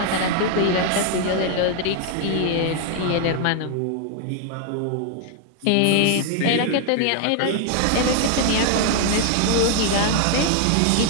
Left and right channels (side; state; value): both; different; correlation 0.00